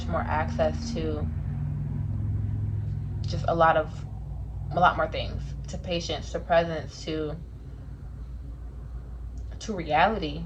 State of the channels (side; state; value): both; identical; correlation 1.00